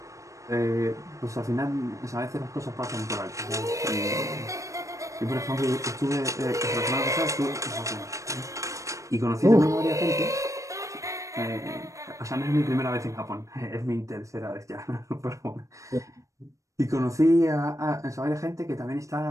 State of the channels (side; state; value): left; late; 0.15 ms